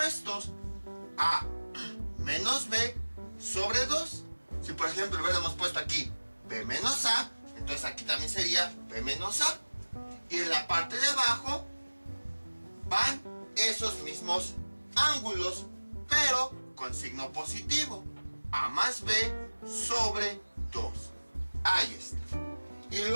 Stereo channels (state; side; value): inverted; both; correlation -1.00